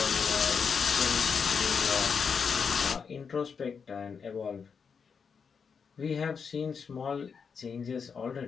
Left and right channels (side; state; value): right; quieter; 6.1 dB